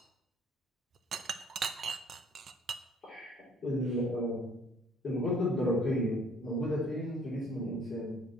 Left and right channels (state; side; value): normal; both; correlation 0.58